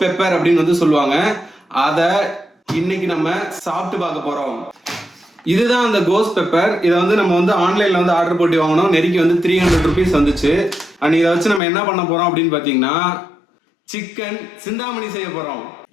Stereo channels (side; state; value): right; drops out; at 11.6 s